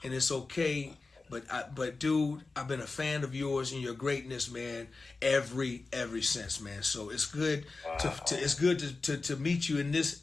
and it's okay. But dude, I've been a fan of yours and your greatness, man, ever since, man. So it's good to meet you in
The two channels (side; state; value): right; quieter; 3.8 dB